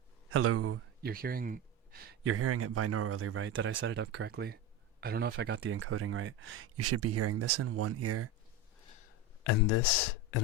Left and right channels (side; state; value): both; normal; correlation 0.20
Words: Hello. You're hearing it binaurally, right? Did I set it up correctly? I don't know if I got the encoding right. You should be hearing this in one ear and this in